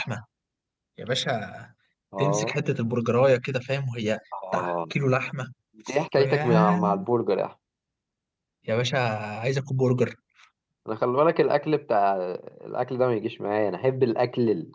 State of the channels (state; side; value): identical; both; correlation 1.00